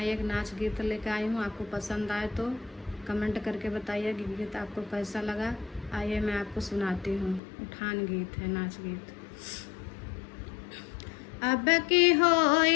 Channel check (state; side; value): drops out; right; at 7.4 s